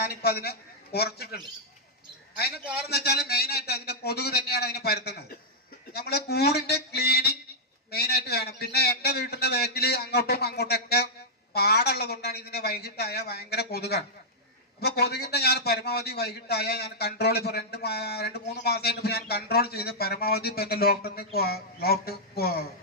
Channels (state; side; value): normal; both; correlation -0.10